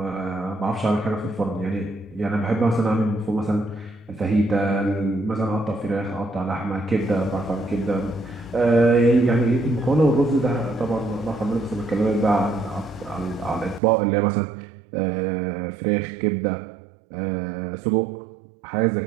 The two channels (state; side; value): drops out; left; at 13.8 s